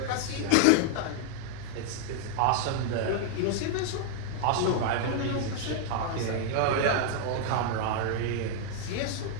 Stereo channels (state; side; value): different; both; correlation 0.00